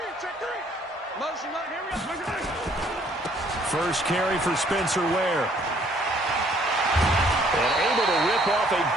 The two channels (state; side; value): normal; both; correlation 0.62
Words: Motion, here we go. First carry for Spencer Ware. And able to rip off a